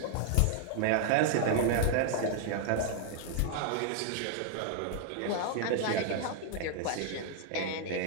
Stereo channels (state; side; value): different; both; correlation 0.00